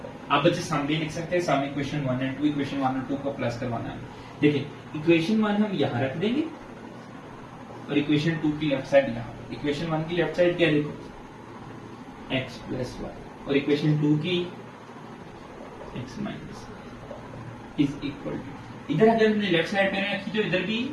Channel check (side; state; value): both; identical; correlation 1.00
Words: आप बच्चे सामने लिख सकते हैं, सामने इक्वेशन 1 एंड 2, इक्वेशन 1 और 2 को प्लस करवाना है। देखिए इक्वेशन 1 हम यहां रख देंगे और इक्वेशन 2 की लेफ्ट साइड यहां। इक्वेशन 1 की लेफ्ट साइड क्या, देखो x प्लस वाई, और इक्वेशन 2 की x minus is equal to, इधर अगर हमने लेफ्ट साइड पे रखी तो इधर भी